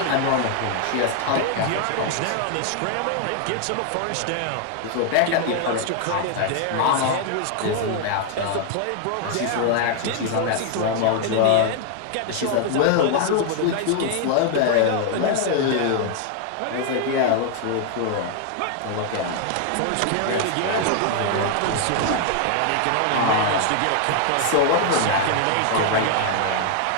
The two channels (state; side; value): different; both; correlation 0.00